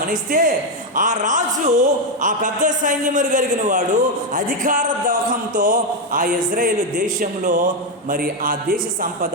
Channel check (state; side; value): normal; both; correlation 0.05